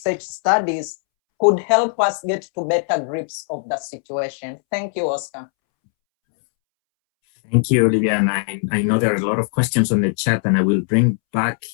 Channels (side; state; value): right; silent; 66 dB below the other